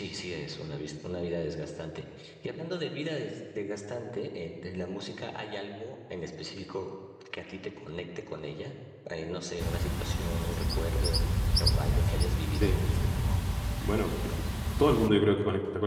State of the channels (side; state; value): both; identical; correlation 1.00